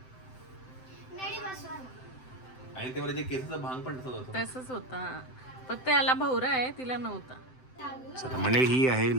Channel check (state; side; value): late; right; 7.8 ms